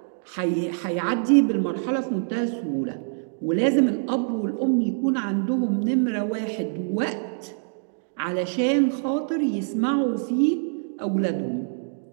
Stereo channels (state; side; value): silent; left; digital silence